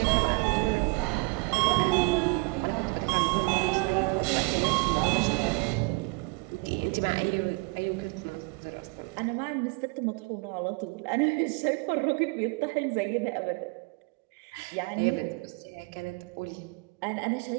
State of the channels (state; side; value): quieter; left; 29.0 dB